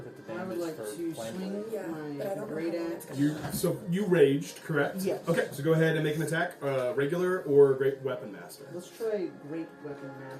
at the I would damage like for to flame swing blade. Yeah, but I my don't know great how long axe. it's gonna You raged, correct? Yes. Okay, so go ahead and make an attack, regular or great weapon master. Let's try Great Weapon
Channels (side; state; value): both; identical; correlation 1.00